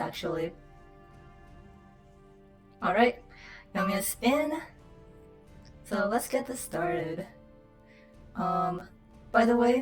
Alright, Yum is in. So let's get this started. By the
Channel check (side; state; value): both; identical; correlation 1.00